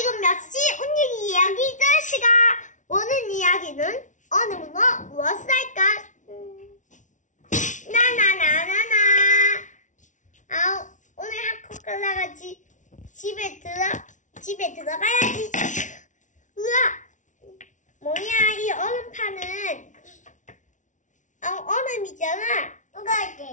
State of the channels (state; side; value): late; right; 0.37 ms